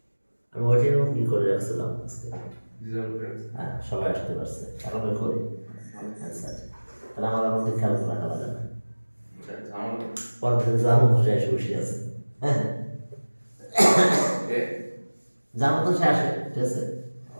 আমি ওইটাই কি করে রাখছিলাম আজকে, হ্যাঁ সবাই আসতে পারছে, আরামে করি আচ্ছা, তাহলে আমার মধ্যে খেয়াল করে রাখা লাগে না, পরের দিন যার মতো সে এসে বসে আছে, হ্যাঁ যার মতো সে আসে, ঠিক আছে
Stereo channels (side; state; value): both; inverted; correlation -1.00